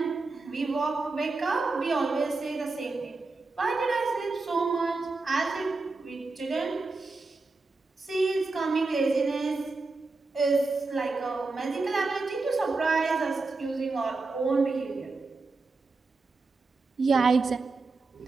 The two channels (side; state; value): left; quieter; 3.7 dB